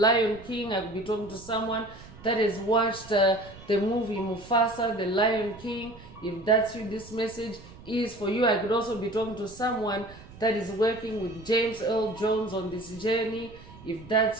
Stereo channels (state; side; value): noise; right; rumble, 19 dB below the sound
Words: King. I could be talking to someone that has watched the movie Mufasa, the Lion King. If that's you, this message is for you. I could also be talking to someone that is working with James Earl Jones on this journey. If